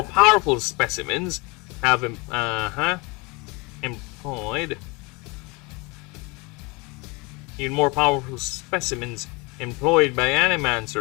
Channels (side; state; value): right; quieter; 27.1 dB